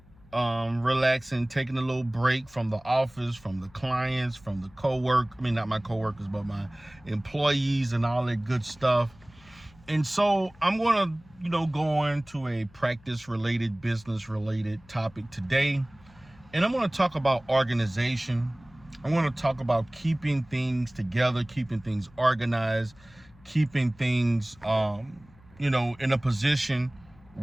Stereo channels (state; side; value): noise; left; hum, 26 dB below the sound